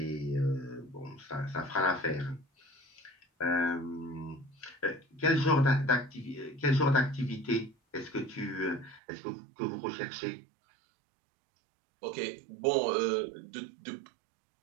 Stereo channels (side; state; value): left; drops out; at 9.0 s